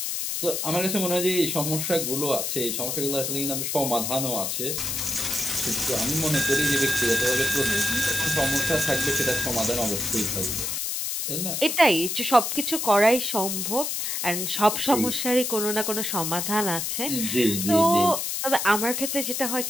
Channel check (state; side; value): noise; left; hiss, 2 dB below the sound